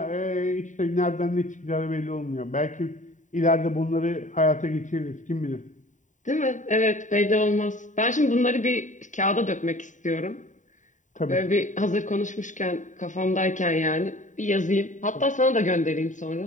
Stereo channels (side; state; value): right; late; 0.36 ms